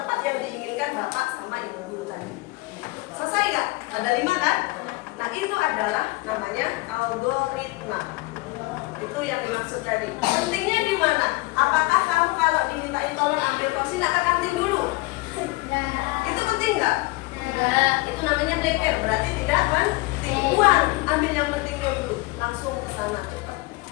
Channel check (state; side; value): quieter; right; 22.5 dB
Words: yang diinginkan bapak sama ibu guru tadi. Selesai gak? Ada 5 kan? Nah, itu adalah namanya algoritma. Itu yang dimaksud tadi. Pentingnya di mana? Apakah kamu kalau dimintain tolong ambil kursi nak ke kantin dulu? Itu penting nggak? Itu namanya breaker. Berarti tidak penting. Buang, ambil yang pentingnya dulu. Langsung ke sana cepat.